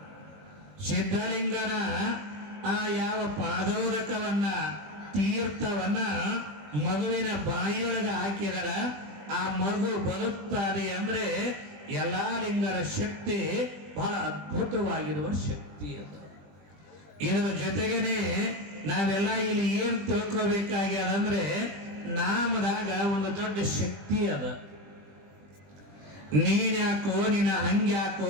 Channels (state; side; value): late; left; 20 ms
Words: ಸಿದ್ಧಲಿಂಗನ ಆ ಯಾವ ಪಾದೋದಕವನ್ನ, ತೀರ್ಥವನ್ನ ಮಗುವಿನ ಬಾಯಿಯೊಳಗ ಹಾಕಿದರ ಆ ಮಗು ಬದುಕ್ತಾರೆ. ಅಂದ್ರೆ ಎಲ್ಲಾ ಲಿಂಗರ ಶಕ್ತಿ ಬಹಳ ಅದ್ಭುತವಾಗಿರುವ ಶಕ್ತಿ ಅದು. ಇದರ ಜೊತೆಗೇನೆ ನಾವೆಲ್ಲ ಇಲ್ಲಿ ಏನ್ ತಿಳ್ಕೋಬೇಕಾಗ್ಯದಂದ್ರೆ, ನಾಮದಾಗ ಒಂದು ದೊಡ್ಡ ಶಕ್ತಿ ಅದ. ನೀನ್ಯಾಕೋ, ನಿನ್ನ ಹಂಗ್ಯಾಕೋ,